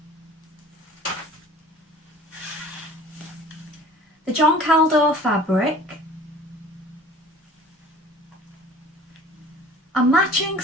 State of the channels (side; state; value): both; normal; correlation 0.46